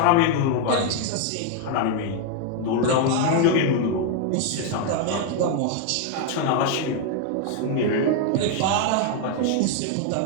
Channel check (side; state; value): both; different; correlation 0.00